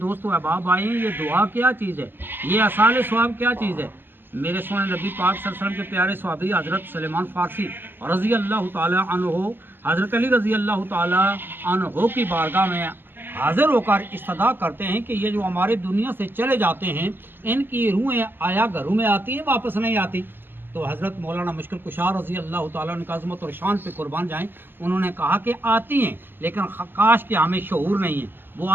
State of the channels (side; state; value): left; late; 0.096 ms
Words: دوست و احباب آئے ہیں، یہ دعا کیا چیز ہے، یہ اصحاب ثواب کیا چیز ہے۔ میرے سونے نبی پاک صلی اللہ علیہ وسلم کے پیارے صحابی حضرت سلیمان فارسی رضی اللہ تعالی عنہ، حضرت علی رضی اللہ تعالی عنہ کی بارگاہ میں حاضر ہو کر استدعا کرتے ہیں کہ یہ جو ہمارے دنیا سے چلے جاتے ہیں ان کی روحیں آیا گھروں میں آتی ہیں واپس نہیں آتی؟ تو حضرت مولانا مشکل کشار رضی اللہ تعالیٰ عنہ کی عظمت اور شان پہ قربان جائیں، انہوں نے کہا کہ آتی ہیں لیکن کاش کہ ہمیں شعور نہیں ہے، وہ